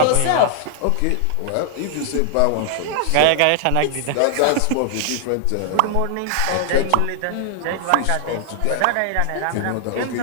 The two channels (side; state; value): both; different; correlation 0.00